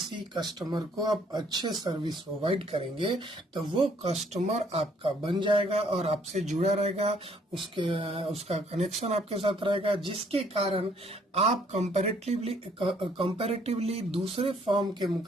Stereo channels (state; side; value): normal; both; correlation 0.64